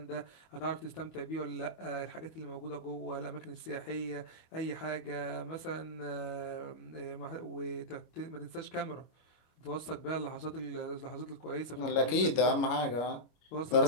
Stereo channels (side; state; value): right; late; 25 ms